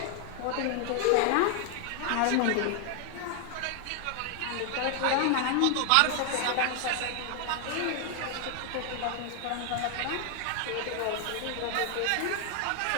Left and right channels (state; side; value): different; both; correlation 0.00